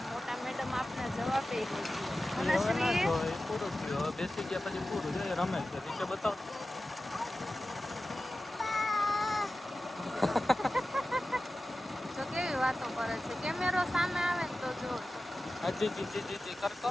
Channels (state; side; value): normal; both; correlation 0.95